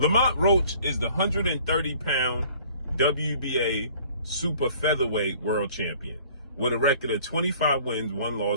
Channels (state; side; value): inverted; both; correlation -0.53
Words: Roach is the 130-pound WBA super featherweight world champion with a record of 25 wins, 1